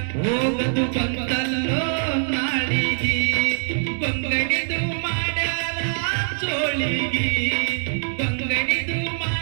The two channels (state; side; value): silent; left; digital silence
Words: ಹೋಗದು ಬಂದಲ್ಲೋ ನಾಳಿಗೆ ಬಂಗಡಿದು ಮಾಡ್ಯಾರ ಜೋಳಿಗೆ ಬಂಗಡಿದು